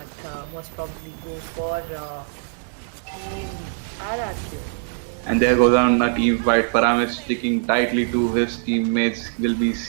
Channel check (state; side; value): silent; left; digital silence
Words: most probably go for Team RRQ. And there goes on a team fight. Param is sticking tightly to his teammates. Will be